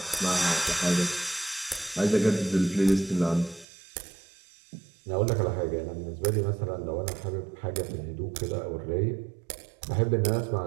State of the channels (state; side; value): drops out; left; at 3.7 s